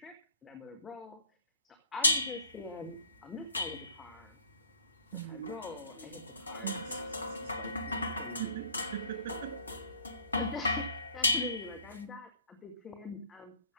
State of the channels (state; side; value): inverted; both; correlation -0.55